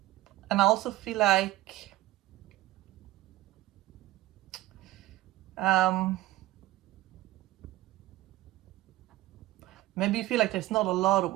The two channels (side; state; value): left; quieter; 16.7 dB